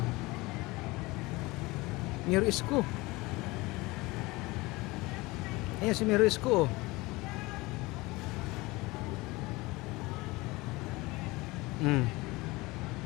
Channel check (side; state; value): right; quieter; 22.1 dB